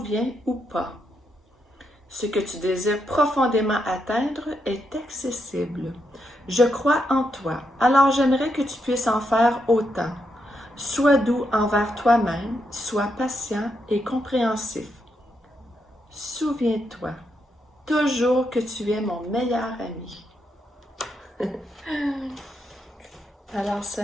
ou pas. Ce que tu désires profondément atteindre est accessible. Je crois en toi, alors j'aimerais que tu puisses en faire autant. Sois doux envers toi-même, sois patient et compréhensif. Souviens-toi toujours que tu es mon meilleur ami. Alors ce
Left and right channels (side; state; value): both; normal; correlation 0.81